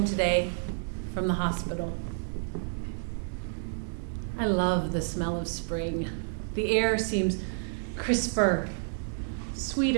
today from the hospital. I love the smell of spring. The air seems crisper,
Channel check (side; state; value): left; silent; digital silence